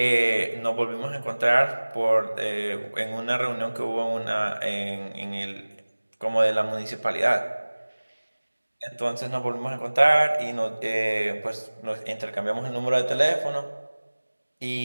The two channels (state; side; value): inverted; both; correlation -1.00